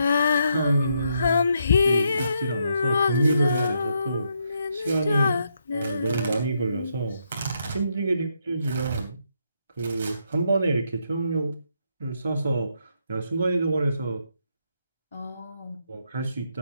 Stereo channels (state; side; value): inverted; both; correlation -0.77